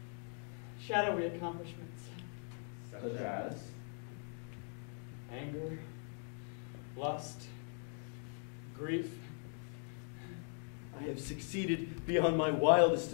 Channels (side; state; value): right; silent; 51 dB below the other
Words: shadowy accomplishments. Such as? Anger, lust, grief. I have succeeded beyond my wildest